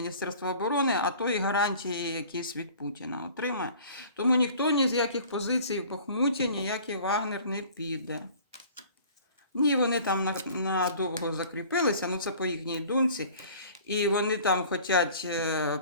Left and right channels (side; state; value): both; inverted; correlation -0.48